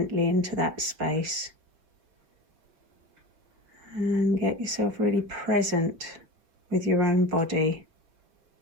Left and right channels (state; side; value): late; left; 6.0 ms